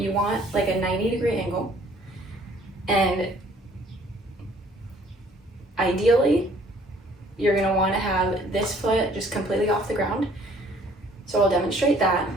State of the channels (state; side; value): normal; both; correlation 0.58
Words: want like a 90-degree angle, and ideally, you're gonna wanna have this foot just completely off the ground. So I'll demonstrate that.